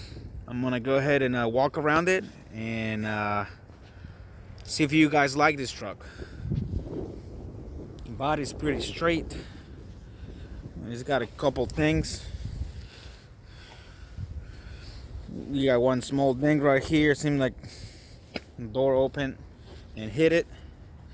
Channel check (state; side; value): identical; both; correlation 1.00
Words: I'm gonna go ahead and walk around it and see if you guys like this truck. The body's pretty straight. It's got a couple things. You got one small ding right here. Seems like the door opened and hit it.